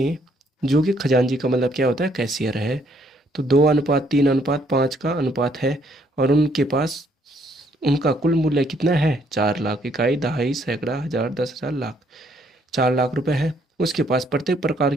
जो कि खजांची का मतलब क्या होता है, कैशियर है, तो 2:3:5 का अनुपात है। और उनके पास उनका कुल मूल्य कितना है, 4 लाख। इकाई, दहाई, सैकड़ा, हजार, 10,000, लाख। 4 लाख रुपए है। उसके पास प्रत्येक प्रकार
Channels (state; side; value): normal; both; correlation 0.68